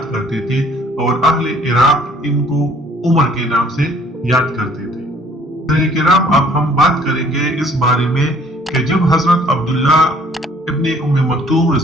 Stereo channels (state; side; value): normal; both; correlation 0.57